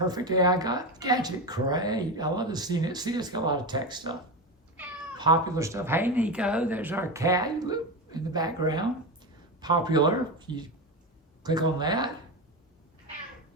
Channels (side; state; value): both; normal; correlation 0.18